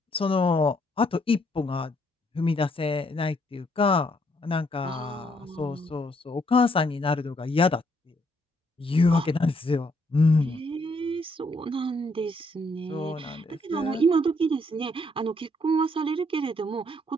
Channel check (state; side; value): normal; both; correlation 0.71